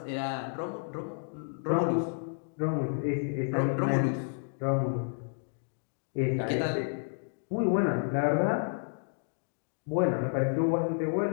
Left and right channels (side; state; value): right; silent; digital silence